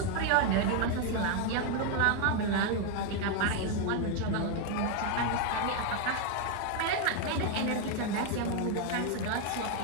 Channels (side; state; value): both; different; correlation 0.01